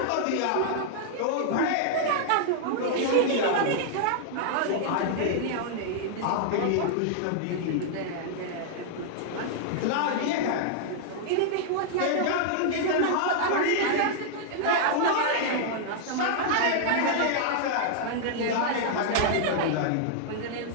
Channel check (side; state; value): both; different; correlation -0.01